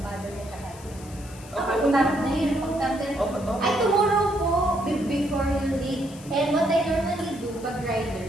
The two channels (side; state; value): left; noise; hiss, 20 dB below the sound